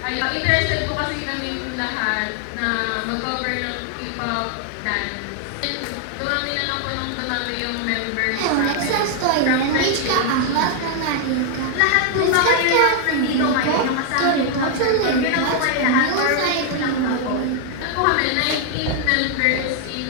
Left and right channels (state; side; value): different; both; correlation 0.00